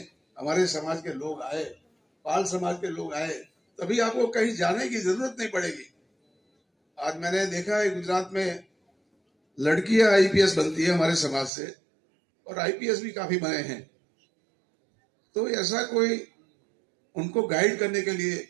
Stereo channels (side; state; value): left; drops out; at 11.5 s